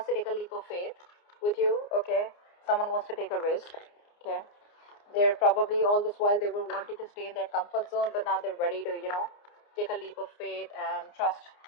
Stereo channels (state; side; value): late; right; 29 ms